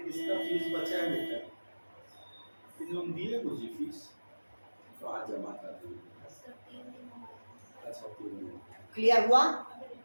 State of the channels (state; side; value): inverted; both; correlation -1.00